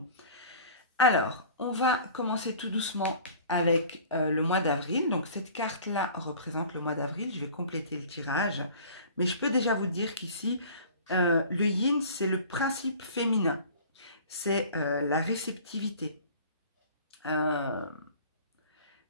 Alors, on va commencer tout doucement avec le mois d'avril. Donc, cette carte-là représente le mois d'avril. Je vais compléter le tirage. Mais je peux déjà vous dire qu'ici, le yin, c'est le principe féminin. C'est la réceptivité.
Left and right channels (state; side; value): inverted; both; correlation -0.45